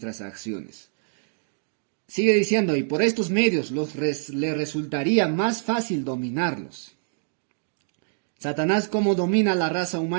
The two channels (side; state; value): left; silent; digital silence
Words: acciones. Sigue diciendo, y por estos medios le resultaría más fácil dominarlos. Satanás, como domina la raza